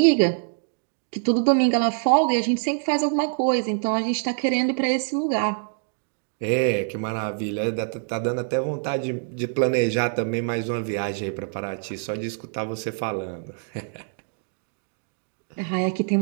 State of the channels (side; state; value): left; silent; digital silence